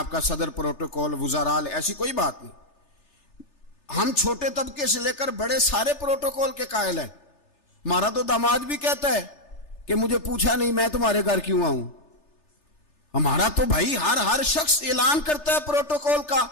کا صدر پروٹوکول, وزراء, ایسی کوئی بات نہیں. ہم چھوٹے طبقے سے لے کر بڑے سارے پروٹوکول کے قائل ہیں. ہمارا تو داماد بھی کہتا ہے کہ مجھے پوچھا نہیں, میں تمہارے گھر کیوں آؤں. ہمارا تو بھائی ہر شخص اعلان کرتا ہے پروٹوکول کا,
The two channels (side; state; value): right; late; 3.3 ms